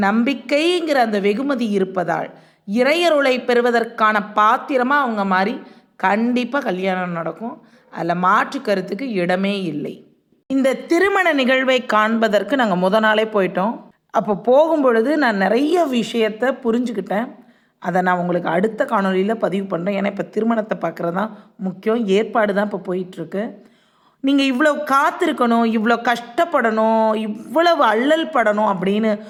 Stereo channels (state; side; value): identical; both; correlation 1.00